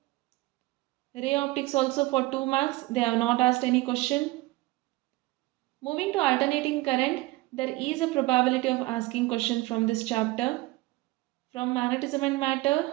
Ray optics also for 2 marks, they have not asked any question. Moving to alternating current, there is a probability of asking question from this chapter. From magnetism and matter,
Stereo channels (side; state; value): left; quieter; 20.1 dB